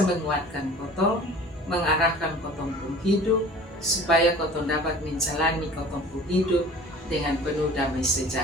menguatkan kotong, mengarahkan kotong pun hidup, supaya kotong dapat menjalani kotong pun hidup dengan penuh damai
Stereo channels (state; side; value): normal; both; correlation 0.44